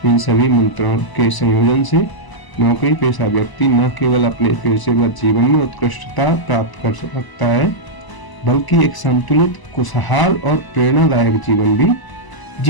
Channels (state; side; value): late; right; 1.0 ms